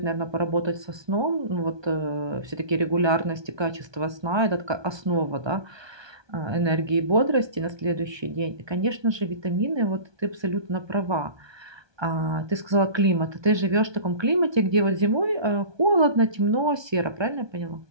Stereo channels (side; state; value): left; late; 1.2 ms